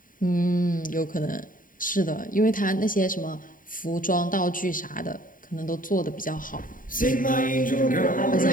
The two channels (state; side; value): late; right; 0.39 ms